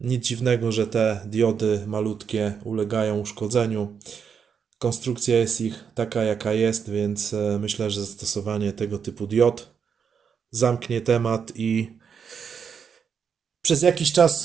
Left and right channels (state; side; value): quieter; left; 6.8 dB